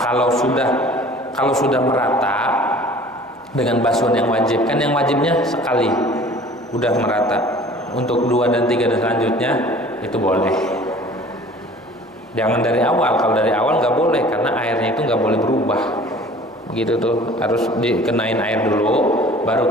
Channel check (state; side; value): normal; both; correlation 0.47